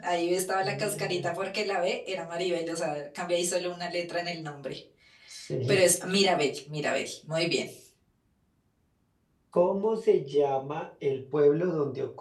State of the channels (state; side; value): identical; both; correlation 1.00